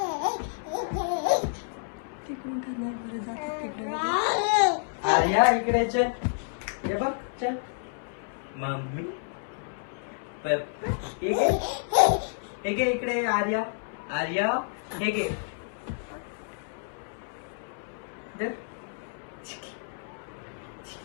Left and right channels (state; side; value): silent; right; 58 dB below the other